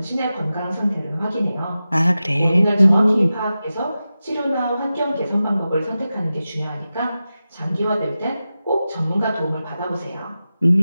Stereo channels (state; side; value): inverted; both; correlation -0.93